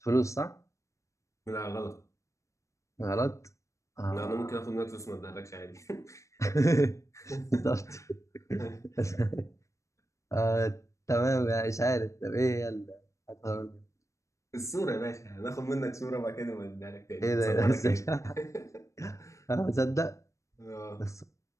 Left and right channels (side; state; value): right; late; 0.15 ms